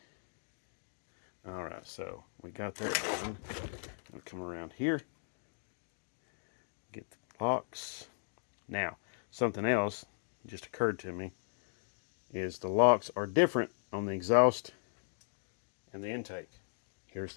All right, so we got that done. We'll come around here, get the locks. Now, something else just occurred to me is the locks are different on the exhaust and the intake. Here's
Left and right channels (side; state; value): right; silent; digital silence